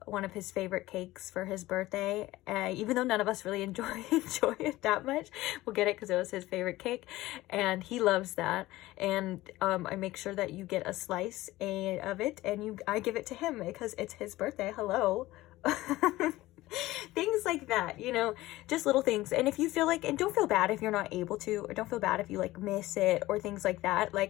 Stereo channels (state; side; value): quieter; right; 17.6 dB